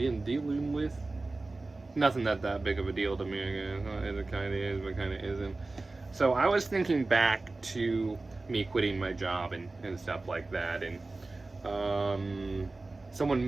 dealing with. Nothing that big of a deal to me, I guess. It kind of is, but kind of isn't. So I was thinking back to me quitting my job and stuff like that, and someone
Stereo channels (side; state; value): left; quieter; 3.3 dB